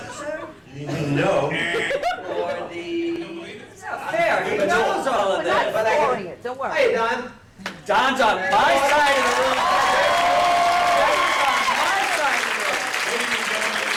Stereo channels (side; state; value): both; identical; correlation 1.00